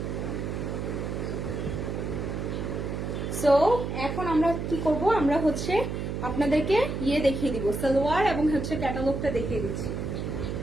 সো এখন আমরা কি করব, আমরা হচ্ছে আপনাদেরকে দেখিয়ে দিব, সালোয়ার এবং হচ্ছে ক্যাটালগটা দেখিয়ে দিচ্ছি।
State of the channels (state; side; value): noise; right; hum, 4 dB below the sound